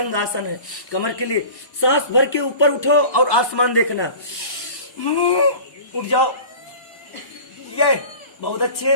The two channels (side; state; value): right; late; 1.1 ms